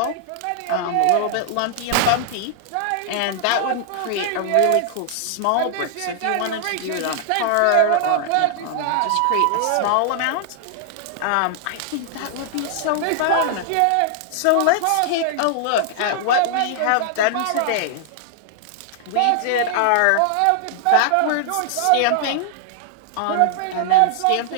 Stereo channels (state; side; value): different; both; correlation -0.01